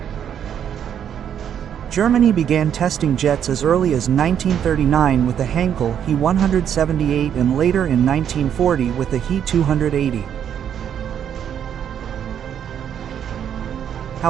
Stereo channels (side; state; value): left; quieter; 9.0 dB